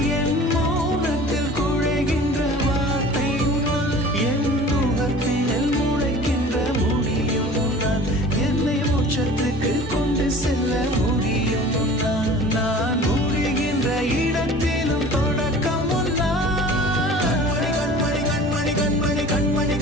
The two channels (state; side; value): normal; both; correlation 0.44